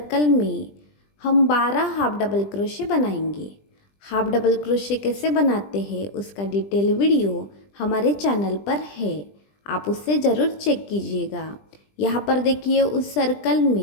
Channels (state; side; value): late; right; 20 ms